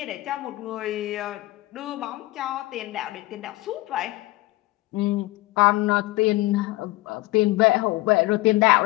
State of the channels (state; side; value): quieter; right; 19.4 dB